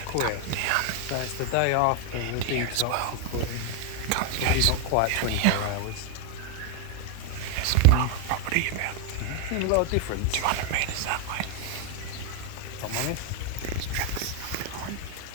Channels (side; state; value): both; different; correlation 0.00